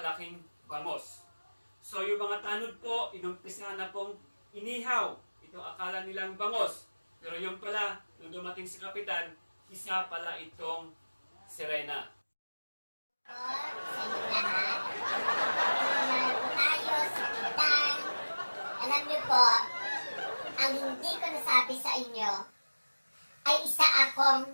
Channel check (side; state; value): both; inverted; correlation -1.00